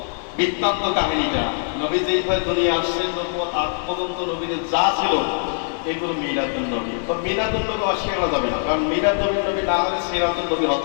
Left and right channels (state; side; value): silent; right; 64 dB below the other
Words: বৃত্তান্ত কাহিনীটা, নবী যেইভাবে দুনিয়া আসছেন আজ পর্যন্ত নবীদের যা ছিল এগুলো মিলাদুন নবী। তো মিলাদুন নবী অস্বীকার যাবে না, কারণ মিলাদুন নবী না হলে সিরাতুন নবী